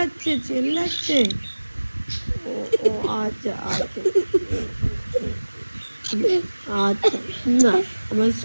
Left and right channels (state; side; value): inverted; both; correlation -1.00